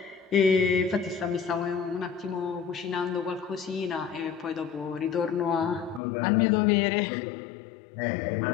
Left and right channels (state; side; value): drops out; right; at 6.0 s